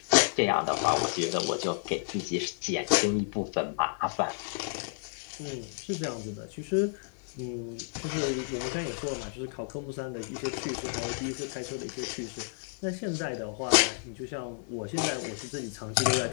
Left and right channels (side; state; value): right; silent; 57 dB below the other